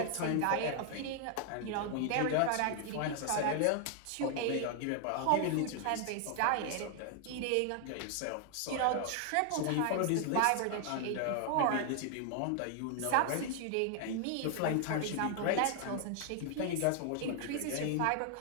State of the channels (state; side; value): different; both; correlation 0.00